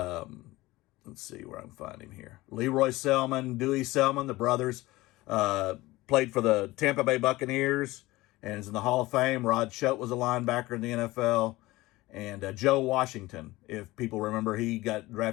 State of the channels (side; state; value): right; quieter; 19.3 dB